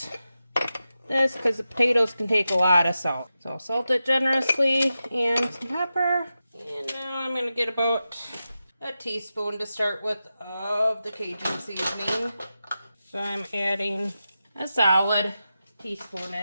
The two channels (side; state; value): both; inverted; correlation -0.91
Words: this because the potatoes can take a lot of salt. So salt it generously and some pepper. And now I'm going to get about a teaspoon to start with of the Cajun seasoning. So I'm adding a solid teaspoon